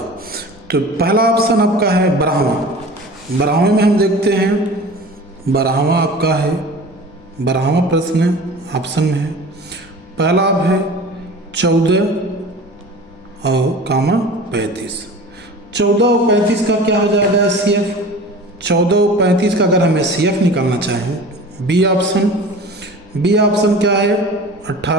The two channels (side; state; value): both; normal; correlation 0.39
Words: तो पहला ऑप्शन आपका है 12वां। 12वें में हम देखते हैं 12वां आपका है, 12वां प्रश्न ऑप्शन में है। पहला आप है 14 और 35। 14 और 35 का क्या हो जाएगा SCF। 14 और 35 का अगर हमें CF निकालना चाहें, बी ऑप्शन। बी ऑप्शन क्या है